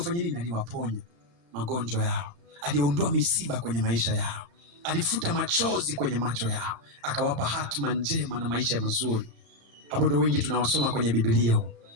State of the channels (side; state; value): left; late; 35 ms